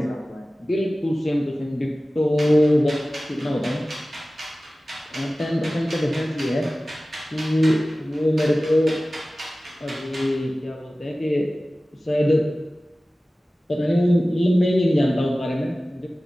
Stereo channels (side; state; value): both; normal; correlation 0.96